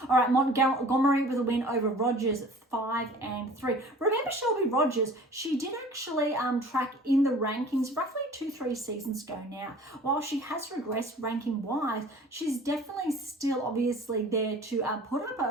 All right, Montgomery with a win over Rogers, 5-3. Remember Shelby Rogers, she did actually track in the rankings roughly 2-3 seasons ago now. While she has regressed ranking wise, she's definitely still obviously there to put up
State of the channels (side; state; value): both; normal; correlation 0.46